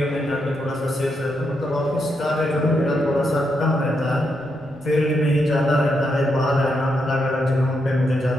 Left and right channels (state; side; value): noise; right; rumble, 27 dB below the sound